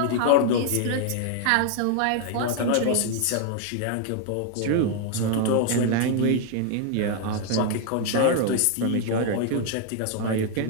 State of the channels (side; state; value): both; different; correlation 0.00